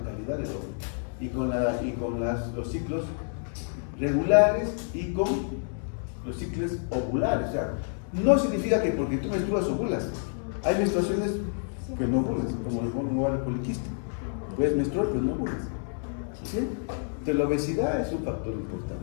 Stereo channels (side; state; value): right; silent; 59 dB below the other